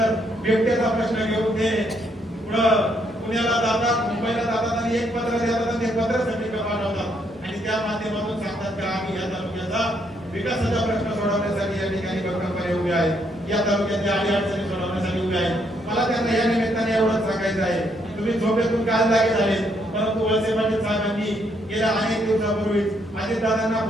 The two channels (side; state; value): both; normal; correlation 0.73